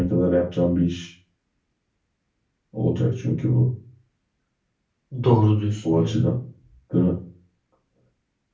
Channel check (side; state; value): both; identical; correlation 1.00